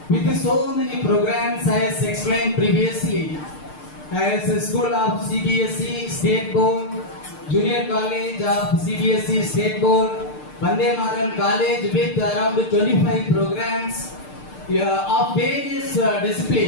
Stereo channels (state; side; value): late; right; 6.6 ms